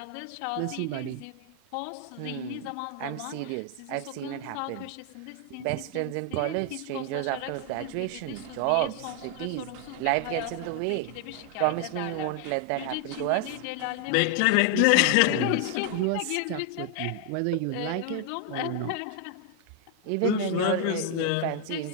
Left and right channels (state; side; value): different; both; correlation 0.00